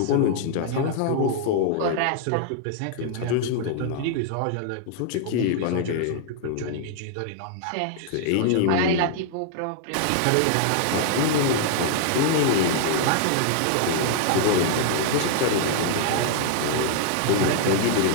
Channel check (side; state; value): both; different; correlation 0.00